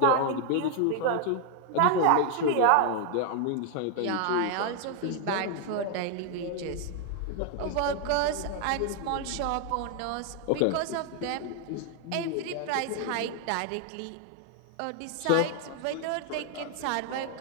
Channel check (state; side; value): different; both; correlation 0.00